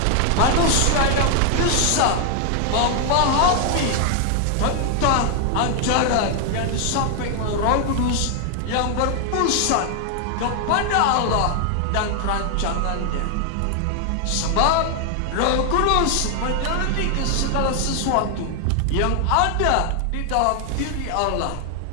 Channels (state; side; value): different; both; correlation 0.00